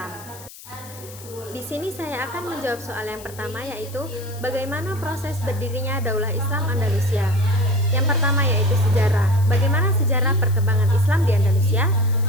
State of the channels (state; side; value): noise; left; hiss, 18 dB below the sound